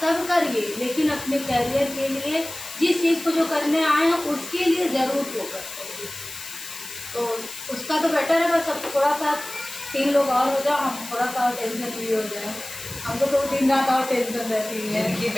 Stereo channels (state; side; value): noise; left; hiss, 11 dB below the sound